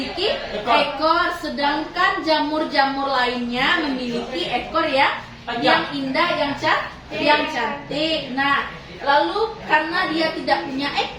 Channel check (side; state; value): both; identical; correlation 1.00